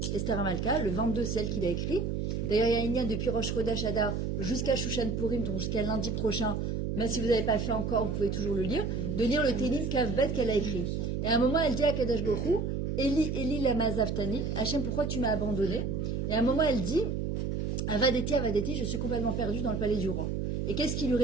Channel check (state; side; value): noise; right; hum, 1 dB below the sound